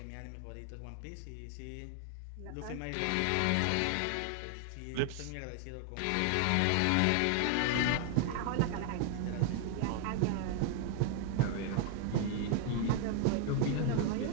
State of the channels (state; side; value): different; both; correlation 0.00